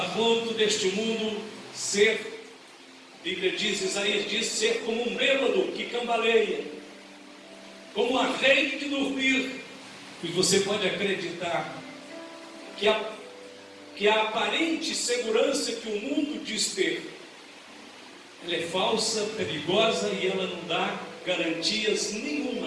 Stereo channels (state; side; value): identical; both; correlation 1.00